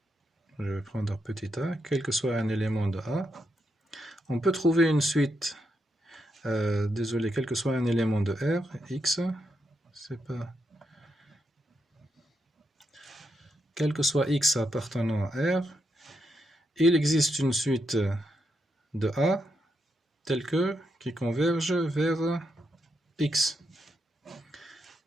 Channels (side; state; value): both; normal; correlation 0.82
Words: je vais prendre petit a, quel que soit un élément de A, on peut trouver une suite, quel que soit un élément de R, X, c'est pas... Quel que soit X appartenant à R, il existe une suite de A, telle que, qui converge vers X.